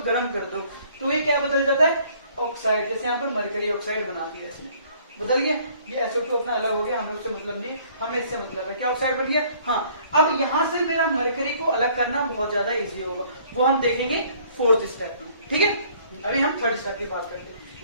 गर्म कर दो, तो ये क्या बदल जाता है, ऑक्साइड। जैसे यहाँ पर मरकरी ऑक्साइड बना दिया, इसमें बदल गया, ये SO2 अपना अलग हो गया, हमें उससे मतलब नहीं, हमें इससे मतलब है, क्या ऑक्साइड बन गया। हाँ, अब यहाँ से मेरा मरकरी को अलग करना बहुत ज्यादा इजी होगा, वो हम देखेंगे फोर्थ स्टेप में, ठीक है। अभी हम थर्ड स्टेप की बात करते हैं।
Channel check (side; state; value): both; inverted; correlation -0.59